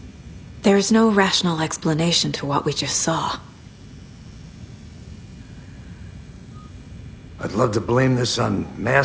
There's no rational explanation to what we just saw. I'd love to blame this on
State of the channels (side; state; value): both; identical; correlation 1.00